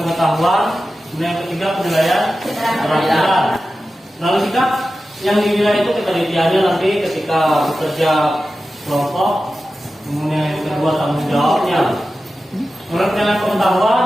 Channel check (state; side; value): normal; both; correlation 0.93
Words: kemudian yang ketiga penilaian keterampilan. Lalu sikap yang dinilai itu ketelitiannya nanti ketika bekerja kelompok, kemudian yang kedua tanggung jawabnya. Kemudian penilaian